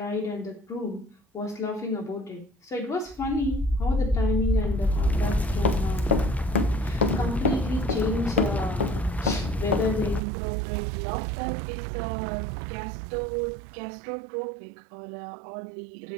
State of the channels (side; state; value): left; drops out; at 10.2 s